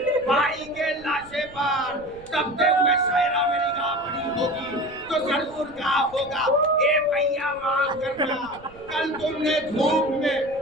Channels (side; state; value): right; noise; rumble, 23 dB below the sound